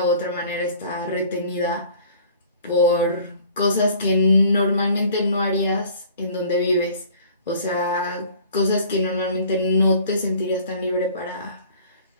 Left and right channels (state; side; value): inverted; both; correlation -0.50